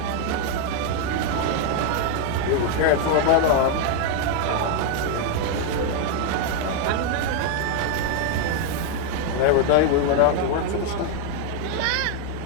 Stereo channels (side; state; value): both; different; correlation 0.00